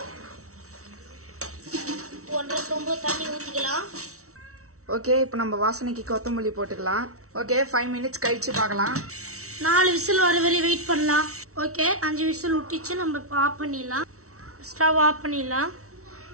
ஒன்றரை சொம்பு தண்ணி ஊற்றிக்கலாம். ஓகே, இப்போ நம்ம வாசனைக்கு கொத்தமல்லி போட்டுக்கலாம். ஓகே, 5 மினிட்ஸ் கழிச்சு பார்க்கலாம். 4 விசில் வர வரை வெயிட் பண்ணலாம். ஓகே, 5 விசில் விட்டுச்சு. நம்ம இப்போ ஆஃப் பண்ணிடலாம். ஸ்டவ் ஆஃப் பண்ணிடலாம்.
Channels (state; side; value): late; left; 0.64 ms